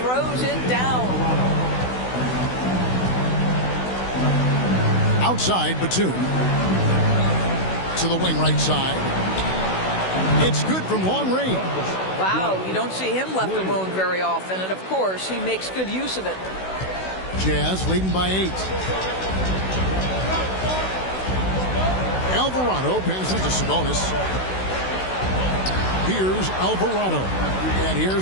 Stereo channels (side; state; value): right; late; 16 ms